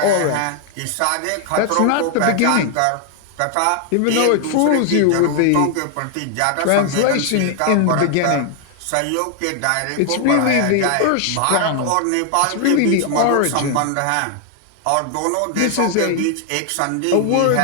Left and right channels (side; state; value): both; different; correlation 0.00